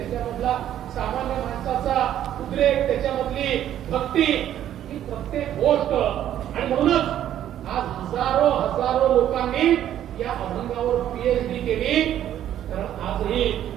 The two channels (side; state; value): left; quieter; 11.3 dB